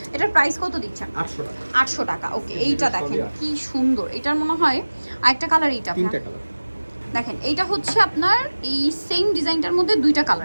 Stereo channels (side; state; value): both; inverted; correlation -1.00